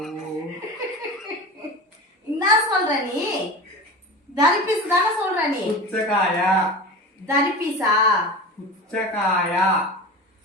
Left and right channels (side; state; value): both; normal; correlation 0.30